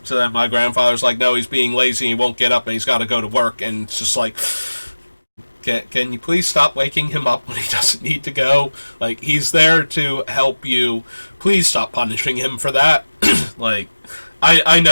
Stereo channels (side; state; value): both; inverted; correlation -1.00